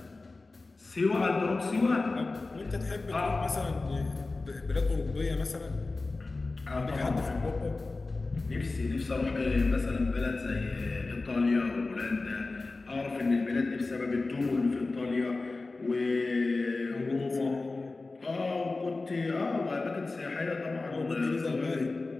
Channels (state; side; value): quieter; right; 3.5 dB